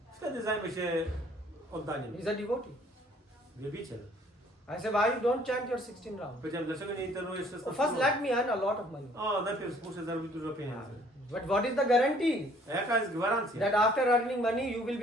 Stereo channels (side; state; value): both; normal; correlation 0.59